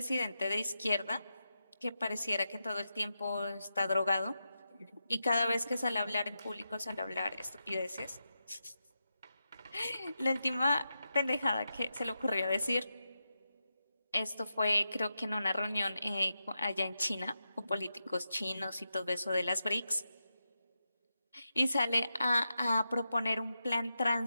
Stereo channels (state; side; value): inverted; both; correlation -0.88